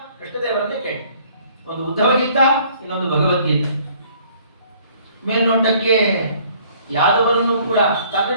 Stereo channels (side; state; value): both; inverted; correlation -0.58